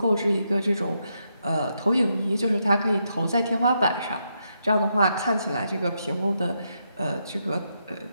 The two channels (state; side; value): inverted; both; correlation -0.81